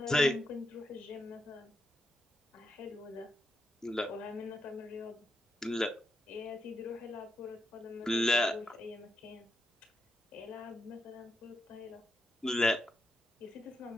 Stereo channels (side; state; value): both; normal; correlation 0.83